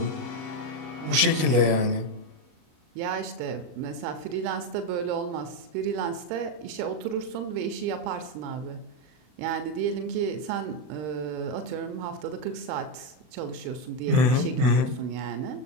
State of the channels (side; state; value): left; late; 39 ms